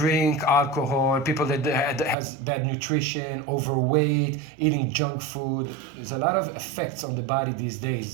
alcohol, people that has bad nutrition, overweight, eating junk food. There's a lot of effects on the body these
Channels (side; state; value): left; drops out; at 2.1 s